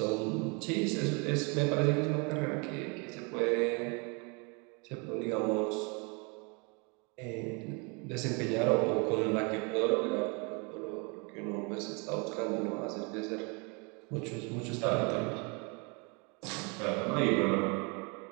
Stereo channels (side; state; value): left; quieter; 32.1 dB